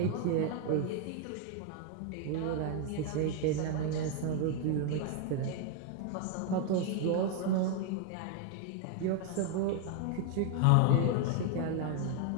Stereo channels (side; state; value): both; different; correlation 0.00